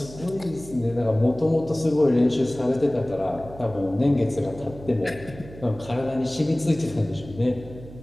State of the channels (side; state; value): right; noise; hum, 17 dB below the sound